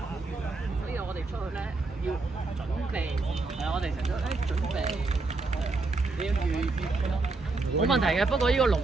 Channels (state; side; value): quieter; left; 3.5 dB